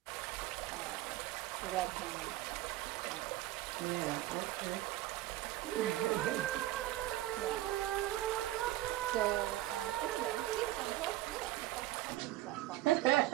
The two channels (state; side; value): quieter; left; 15.3 dB